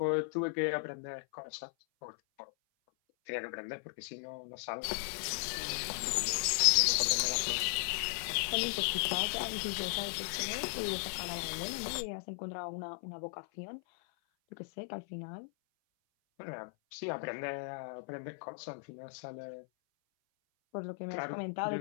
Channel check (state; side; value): silent; right; 53 dB below the other